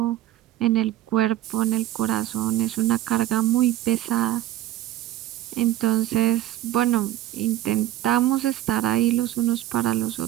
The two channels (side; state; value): left; quieter; 13.7 dB